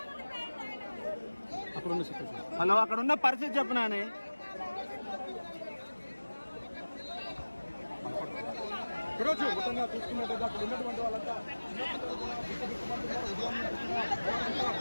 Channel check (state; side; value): inverted; both; correlation -1.00